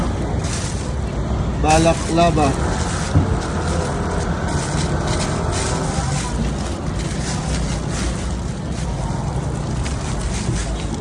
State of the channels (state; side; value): identical; both; correlation 1.00